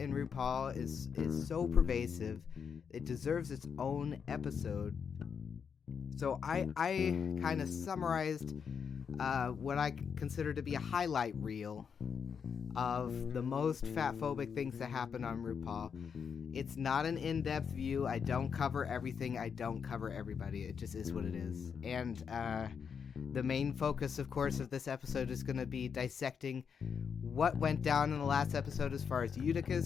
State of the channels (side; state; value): right; quieter; 6.7 dB